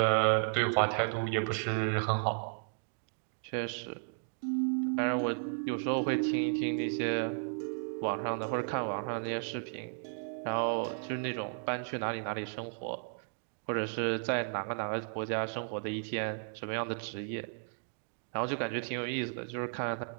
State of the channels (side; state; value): left; silent; digital silence